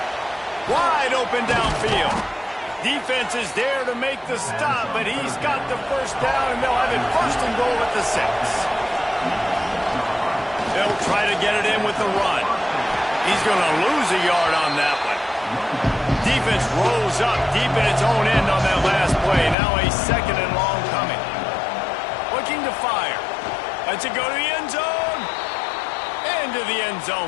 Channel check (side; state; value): right; drops out; at 19.6 s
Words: Wide open downfield. Defense is there to make the stop, but he's got the first down, and they'll have it 1st and goal at the 6. They'll try to get it in with the run. He's going to lose a yard on that one. Defense rolls up deep in its own end on that last play. Now a 2nd and long coming. Looking to fire. Lets it go to the end zone. Into the end zone